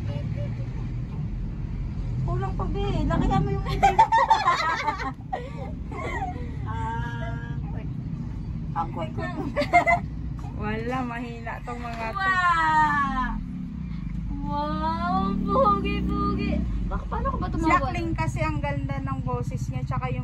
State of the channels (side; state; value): both; identical; correlation 1.00